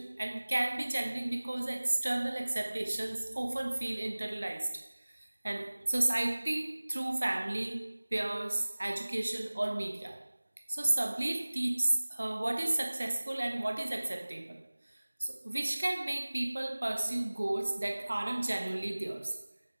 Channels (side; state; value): both; inverted; correlation -1.00